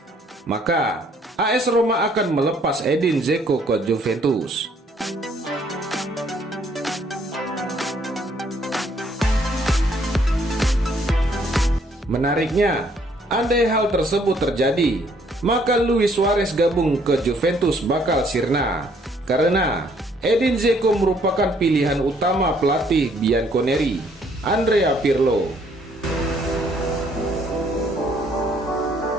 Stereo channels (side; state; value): both; normal; correlation 0.65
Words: maka AS Roma akan melepas Edin Dzeko ke Juventus. Menariknya, andai hal tersebut terjadi, maka Luis Suarez gabung ke Juventus bakal sirna, karena Edin Dzeko merupakan pilihan utama pelatih Bianconeri, Andrea Pirlo.